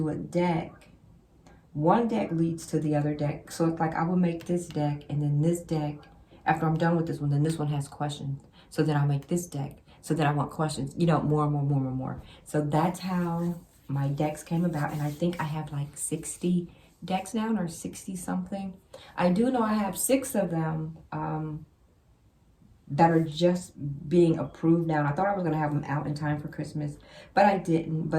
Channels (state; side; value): identical; both; correlation 1.00